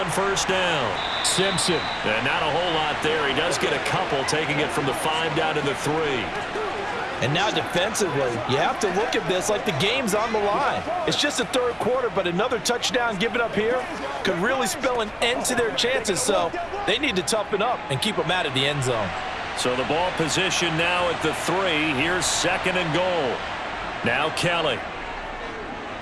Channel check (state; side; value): identical; both; correlation 1.00